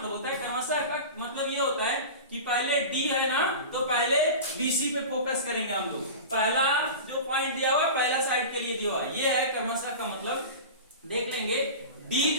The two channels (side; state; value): both; inverted; correlation -0.31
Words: होता है? क्रमशः का मतलब ये होता है कि पहले D है ना, तो पहले BC पे फोकस करेंगे हम लोग। पहला जो पॉइंट दिया हुआ है पहला साइड के लिए दिया हुआ है, ये है क्रमशः का मतलब। देख लेंगे D